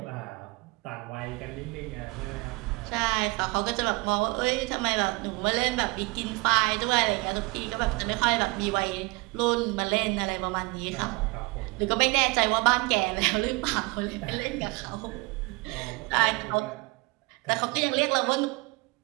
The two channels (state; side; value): quieter; left; 26.3 dB